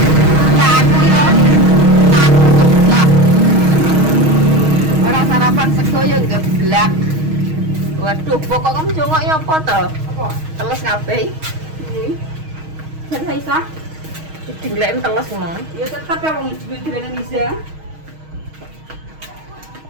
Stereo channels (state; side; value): late; left; 6.4 ms